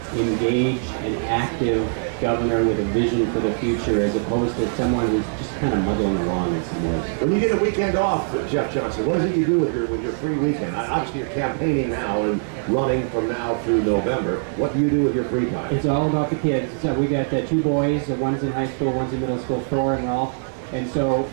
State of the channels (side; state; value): left; silent; digital silence